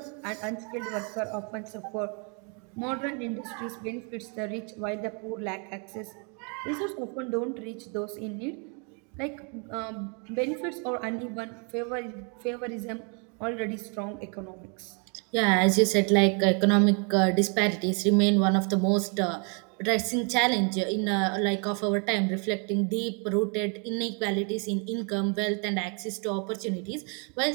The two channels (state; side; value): quieter; left; 36.9 dB